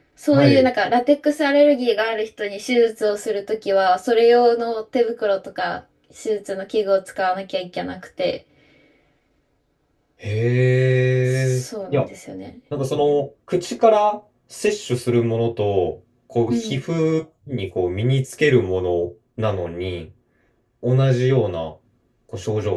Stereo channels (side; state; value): both; identical; correlation 1.00